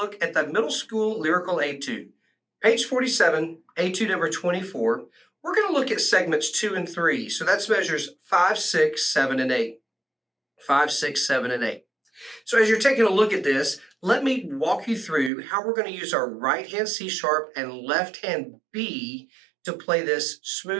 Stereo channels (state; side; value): drops out; left; at 15.3 s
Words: at the Middle School Lyrical Etude. Page 47, Etude number 24. We're going to look at segments 2 and 3. So that's measures 5, 6, 7, and 8. 5, 6, 7, and 8. So as you're taking a look at this, let me walk you through how we're going to use our right hand C sharp and left hand B to play this